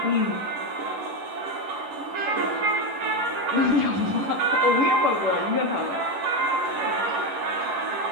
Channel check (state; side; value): late; left; 11 ms